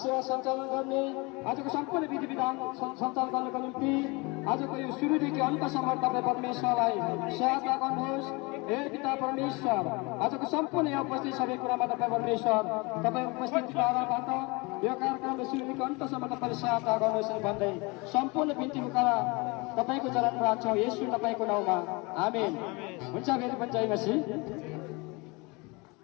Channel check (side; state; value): right; quieter; 26.7 dB